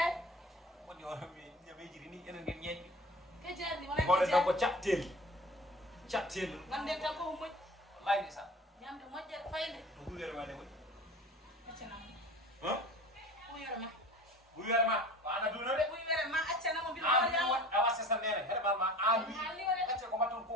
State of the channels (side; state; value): both; normal; correlation 0.39